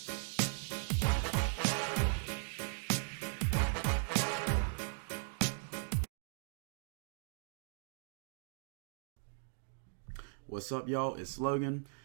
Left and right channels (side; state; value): left; silent; digital silence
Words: What's up, y'all? It's Logan,